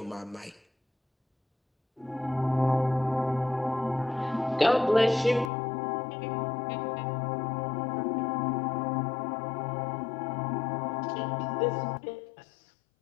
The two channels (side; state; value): right; drops out; at 5.5 s